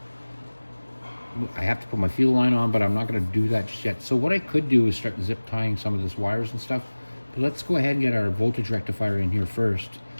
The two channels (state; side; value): inverted; both; correlation -1.00